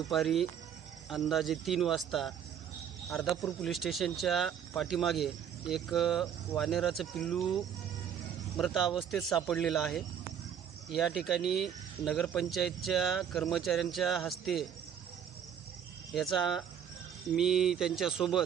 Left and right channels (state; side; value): quieter; left; 8.6 dB